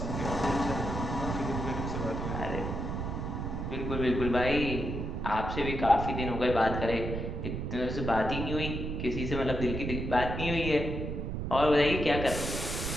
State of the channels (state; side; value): noise; right; rumble, 3 dB below the sound